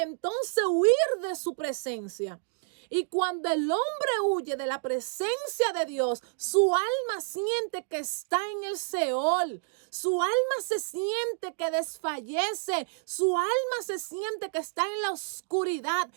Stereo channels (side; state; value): left; silent; 58 dB below the other